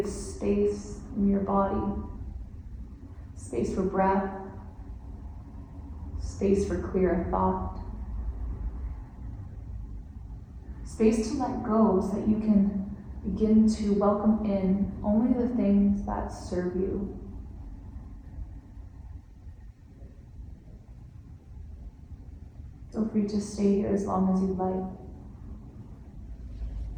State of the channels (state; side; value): identical; both; correlation 1.00